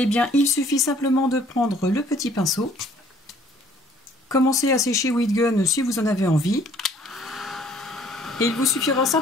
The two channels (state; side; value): normal; both; correlation 0.58